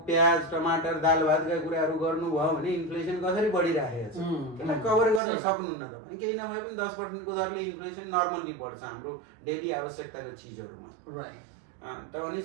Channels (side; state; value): left; drops out; at 5.2 s